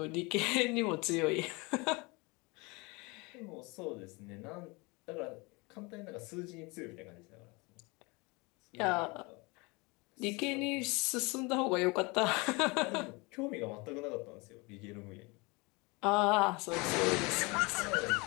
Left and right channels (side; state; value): right; quieter; 26.6 dB